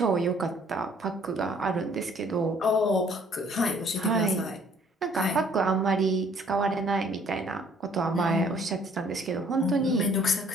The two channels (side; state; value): both; normal; correlation 0.59